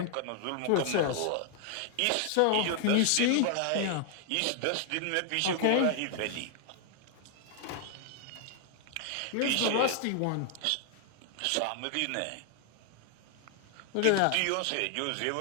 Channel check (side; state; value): both; different; correlation 0.00